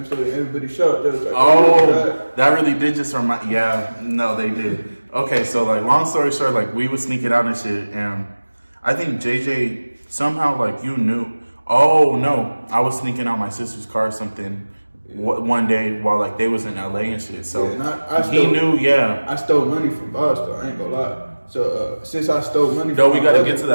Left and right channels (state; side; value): inverted; both; correlation -1.00